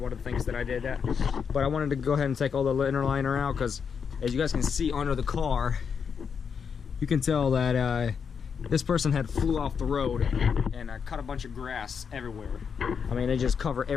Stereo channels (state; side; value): quieter; right; 6.5 dB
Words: of the things that I did that. But I wanted to go ahead and take all the inner liner out because as you guys can see under the car, you can tell that this person had flew off the road and cut a bunch of grass everywhere. I mean, they just cover